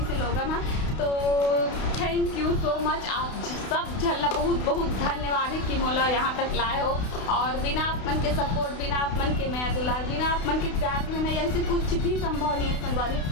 से लोगन है। तो थैंक यू सो मच, आप सब झल्ला बहुत बहुत धन्यवाद है कि मोला यहाँ तक लाए हो। और बिना अपन के सपोर्ट, बिना अपन के मैं दुलार, बिना अपन के प्यार में नहीं ऐसे कुछ भी संभव नहीं है संगवारी।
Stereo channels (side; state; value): right; late; 32 ms